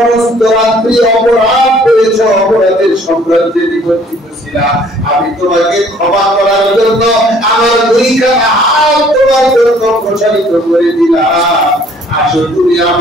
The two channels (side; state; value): both; normal; correlation 0.58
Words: রাত্রি অপরাধ করেছো, অপরাধের সাম্রাজ্যে নিমজ্জিত ছিল, করেছিলা, আমি তোমাকে ক্ষমা করার জন্য আমার দুইখানা হাত তোমার জন্য প্রসারিত করে দিলাম। আসো তুমি